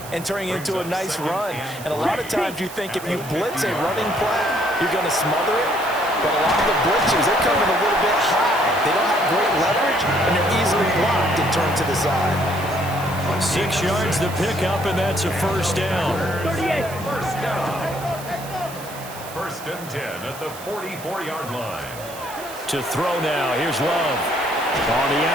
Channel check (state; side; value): noise; right; hiss, 15 dB below the sound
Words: and turning it into a nice run. And a lot of times you think if you blitz a running play, you're going to smother it. But a lot of the blitzers, they're coming a little bit high. They don't have great leverage, and they're easily blocked and turned to the side. 6 yards to pick up, and that's a first down. 38. First down. 1st and 10 at the 44-yard line. To throw now, here's Love. On the